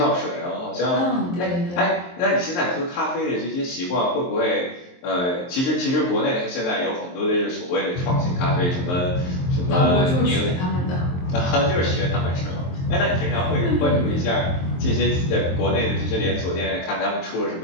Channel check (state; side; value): late; right; 23 ms